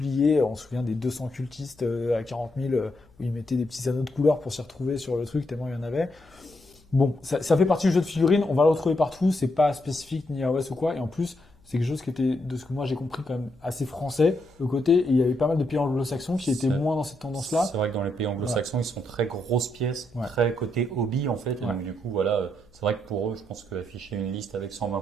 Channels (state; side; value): noise; left; hum, 29 dB below the sound